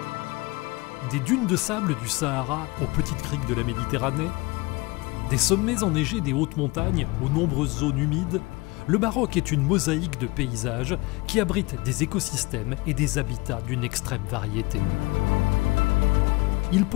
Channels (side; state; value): right; quieter; 24.0 dB